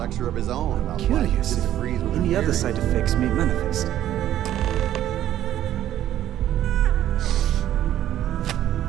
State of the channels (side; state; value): left; quieter; 12.2 dB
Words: of his own about why Curious he if disagrees with any her other theory. side effects may manifest.